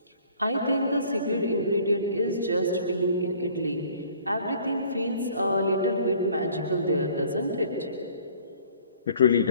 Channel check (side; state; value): both; inverted; correlation -0.54